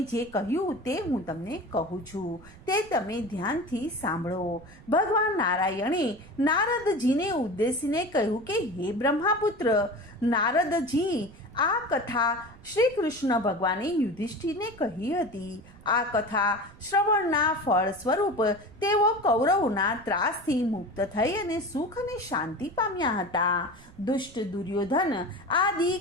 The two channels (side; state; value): right; noise; rumble, 22 dB below the sound